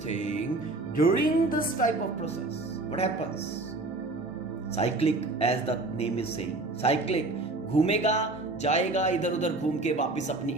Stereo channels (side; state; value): left; quieter; 3.0 dB